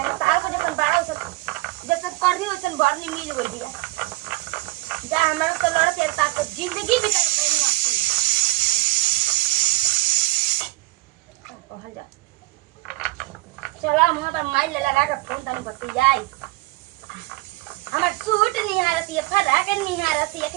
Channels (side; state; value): left; quieter; 21.1 dB